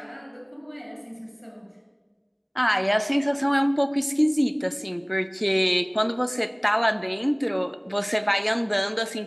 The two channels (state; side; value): identical; both; correlation 1.00